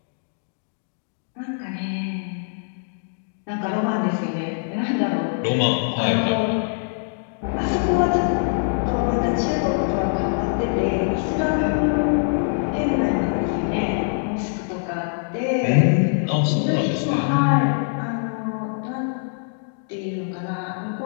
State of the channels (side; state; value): right; silent; digital silence